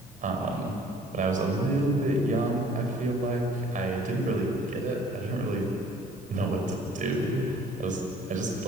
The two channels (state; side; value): normal; both; correlation 0.55